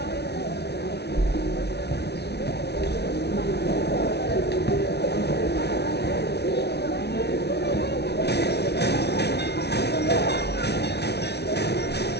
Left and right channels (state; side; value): late; right; 0.49 ms